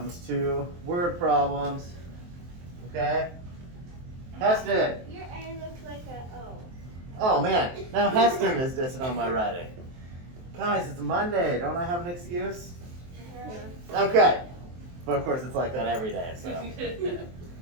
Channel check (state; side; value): late; left; 23 ms